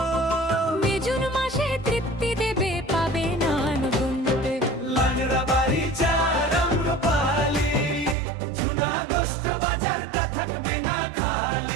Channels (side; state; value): left; drops out; at 8.2 s